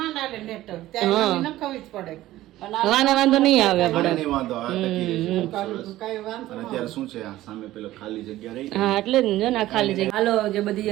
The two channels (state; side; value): quieter; left; 15.4 dB